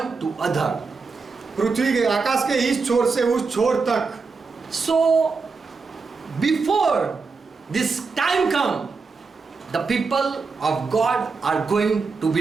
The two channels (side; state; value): left; quieter; 4.6 dB